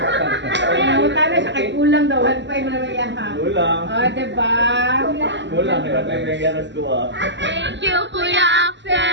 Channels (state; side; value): late; left; 0.53 ms